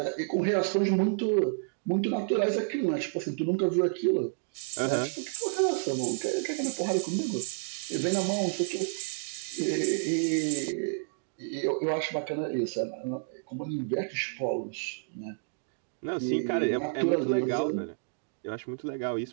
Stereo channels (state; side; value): silent; left; digital silence